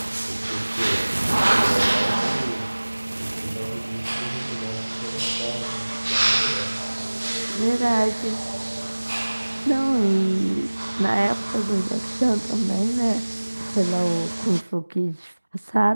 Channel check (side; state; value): both; inverted; correlation -1.00